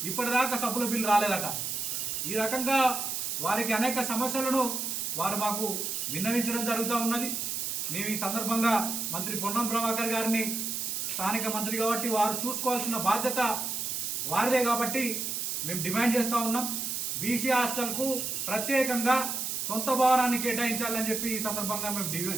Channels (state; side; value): noise; right; hiss, 2 dB below the sound